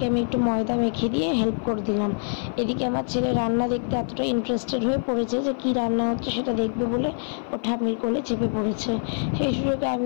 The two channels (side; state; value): right; silent; 55 dB below the other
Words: আমি একটু ময়দা মেখে দিয়ে হেল্প করে দিলাম। এদিকে আমার ছেলে রান্না দেখতে এতটা ইন্টারেস্টেড হয়ে পড়েছে যে কী রান্না হচ্ছে সেটা দেখবে বলে ও ঠাম্মির কোলে চেপে পড়েছে। সেই সুযোগে